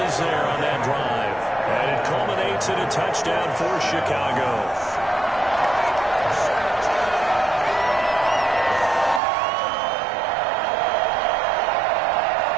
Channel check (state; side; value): drops out; left; at 9.2 s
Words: there on that drive. And it culminates in a touchdown for Chicago.